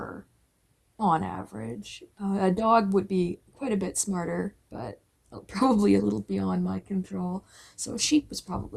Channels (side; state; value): both; identical; correlation 1.00